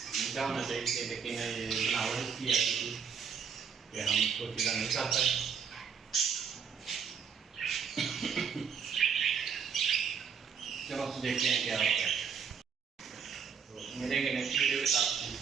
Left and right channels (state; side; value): quieter; left; 6.7 dB